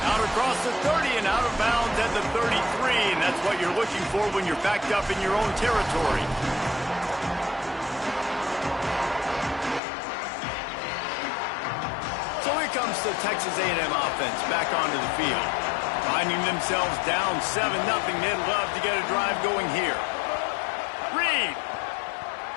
Out across the 30 and out of bounds at the 33, and that's what you're looking for when you're backed up in your own territory. So here comes the Texas A&M offense back onto the field. Finding themselves down 7-0, they'd love to get a drive going here. Reed.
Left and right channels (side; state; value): right; drops out; at 9.8 s